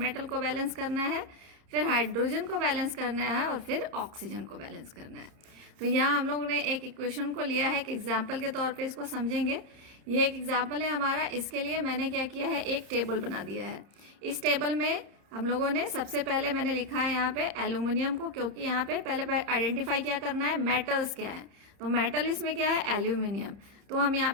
को बैलेंस करना है, फिर हाइड्रोजन को बैलेंस करना है और फिर ऑक्सीजन को बैलेंस करना है। तो यहाँ हम लोगों ने एक इक्वेशन को लिया है, एक एग्जाम्पल के तौर पर इसको समझेंगे। ये एक एग्जाम्पल है हमारा। इसके लिए मैंने क्या किया है, एक टेबल बना दिया है। इस टेबल में हम लोगों ने सबसे पहले मैंने लिखा है यहाँ पे एल्यूमिनियम को, क्योंकि यहाँ पे पहले आइडेंटिफाई क्या करना है, मेटल्स क्या है। तो मेटल इसमें क्या है, एल्यूमिनियम। तो हम यहाँ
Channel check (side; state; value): left; late; 30 ms